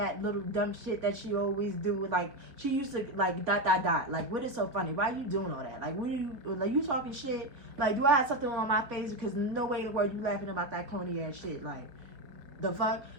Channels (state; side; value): late; left; 3.6 ms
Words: little dumb shit that she always do. Like, she used to, like, ... Like, what is so funny? Why are you doing all that? Like, what are you, like, you talking shit? Like, do I have something on my face? Because no way in the world you laughing about that corny ass shit. Like, the fuck?